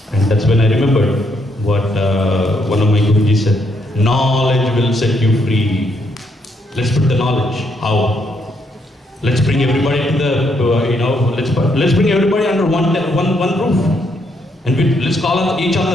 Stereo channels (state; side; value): normal; both; correlation 0.74